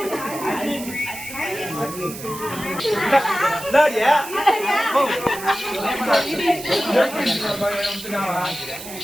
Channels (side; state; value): right; noise; hiss, 12 dB below the sound